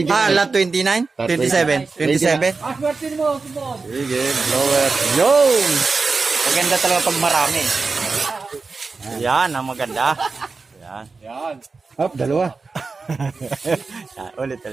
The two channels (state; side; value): quieter; left; 4.3 dB